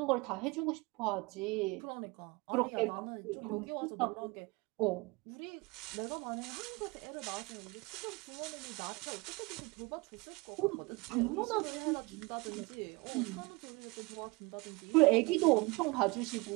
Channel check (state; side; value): quieter; left; 25.5 dB